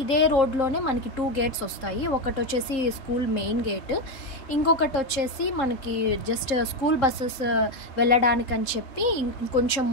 ఇదే రోడ్లోనే మనకి 2 గేట్స్ వస్తాయి. ఒకటి వచ్చేసి స్కూల్ మెయిన్ గేట్, ఇంకొకటి వచ్చేసి మనకి జస్ట్ స్కూల్ బస్సెస్ వెళ్ళడానికని చెప్పి ఇంకొంచెం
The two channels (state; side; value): late; right; 3.8 ms